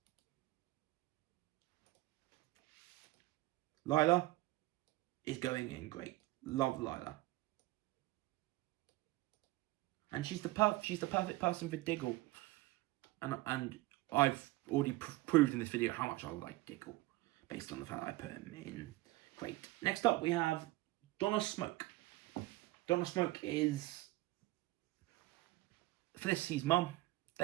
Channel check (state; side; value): quieter; left; 19.1 dB